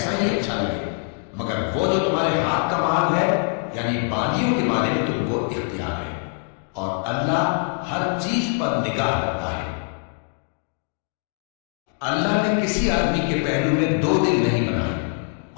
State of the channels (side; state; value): right; quieter; 37.7 dB